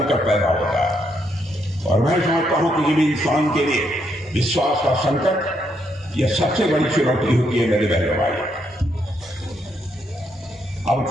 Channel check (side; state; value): both; normal; correlation 0.76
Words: पैदा होता है। और मैं समझता हूं किसी भी इंसान के लिए विश्वास का संकट यह सबसे बड़ी चुनौती होती है मेरे बहनों भाई। अब